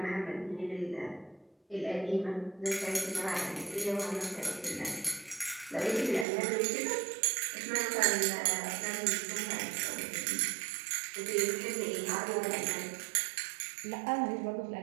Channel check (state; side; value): drops out; left; at 6.2 s